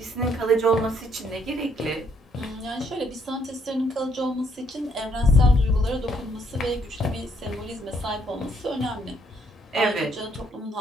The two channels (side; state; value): both; normal; correlation 0.70